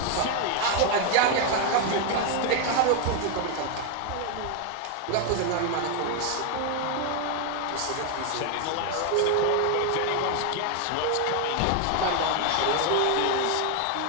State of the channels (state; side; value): different; both; correlation 0.01